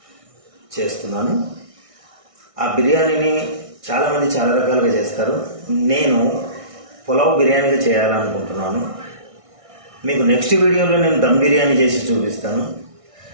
చేస్తున్నాను. ఆ బిర్యానీని చాలామంది చాలా రకాలుగా చేస్తారు. నేను పులావ్ బిర్యానీగా చేయాలనుకుంటున్నాను. మీకు నెక్స్ట్ వీడియోలో నేను దమ్ బిర్యానీ చేసి చూపిస్తాను.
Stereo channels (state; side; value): late; left; 1.6 ms